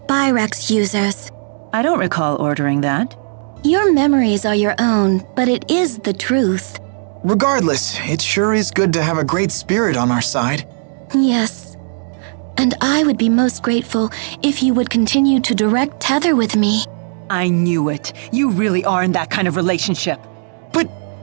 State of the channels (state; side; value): silent; left; digital silence